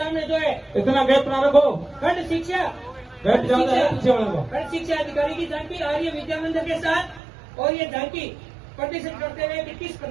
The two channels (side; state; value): left; drops out; at 7.2 s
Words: जो है इतना गैप ना रखो। खंड शिक्षा खंड शिक्षा अधिकारी की झांकी आर्य विद्या मंदिर के साथ, और ये झांकी प्रदर्शन करते हुए कि किस